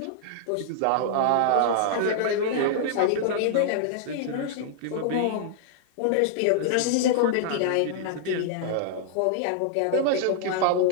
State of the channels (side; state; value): both; different; correlation -0.01